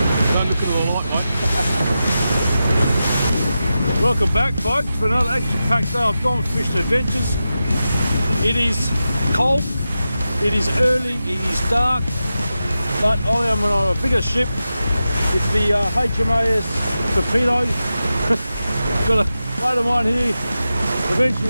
Don't look at the light, mate. Welcome back, folks, for another action-packed day of Gone Fishing Adventures. It is cold, it is early, it is dark, but I am on a bigger ship. It's the HMAS Torpedo. Got a mate of mine here. Eventually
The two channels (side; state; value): both; inverted; correlation -0.91